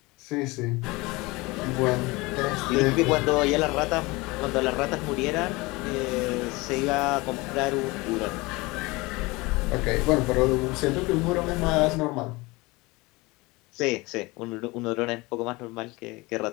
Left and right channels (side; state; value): right; quieter; 23.2 dB